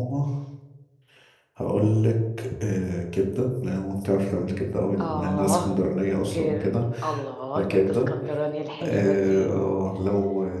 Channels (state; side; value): identical; both; correlation 1.00